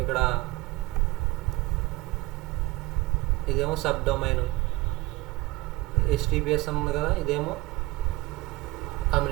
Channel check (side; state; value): left; quieter; 20.5 dB